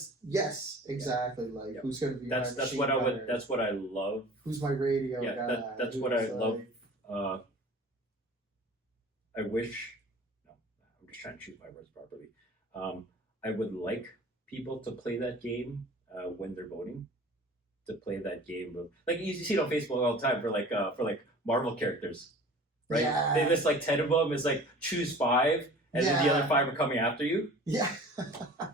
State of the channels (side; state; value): both; normal; correlation 0.43